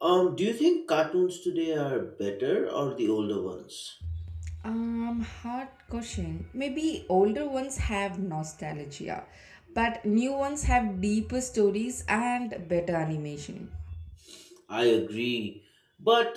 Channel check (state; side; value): identical; both; correlation 1.00